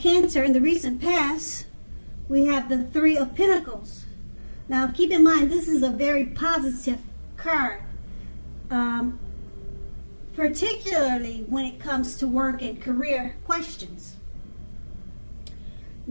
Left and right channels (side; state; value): both; inverted; correlation -1.00